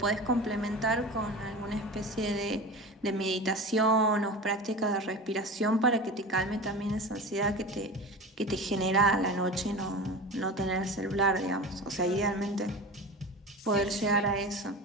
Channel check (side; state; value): both; normal; correlation 0.31